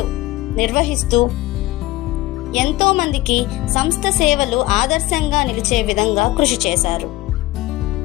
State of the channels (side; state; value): right; quieter; 18.2 dB